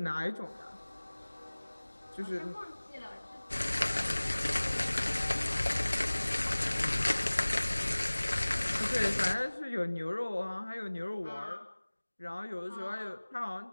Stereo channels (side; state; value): both; inverted; correlation -1.00